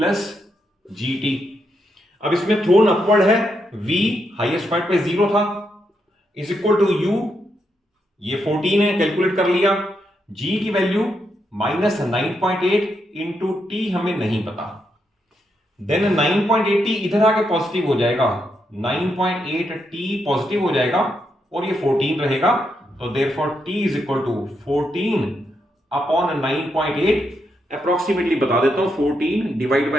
gt। अब इसमें थ्रोन अपवर्ड है, v हाईएस्ट पॉइंट पे 0 था, इज इक्वल टू u, ये 14 है, कैलकुलेट कर लिया, g की वैल्यू माइनस 9.8 इंटू टी हमें नहीं पता, देन 9.8t इधर आके पॉजिटिव हो जाएगा, 9.8t पॉजिटिव हो जाएगा और ये 14 रहेगा, तो therefore t is equal to 14 upon 9.8, approximately बता देता हूं, 14 डिवाइड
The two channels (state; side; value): normal; both; correlation 0.81